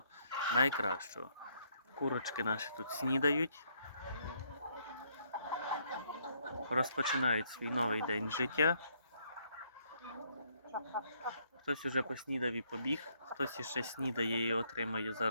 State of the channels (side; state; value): both; inverted; correlation -0.70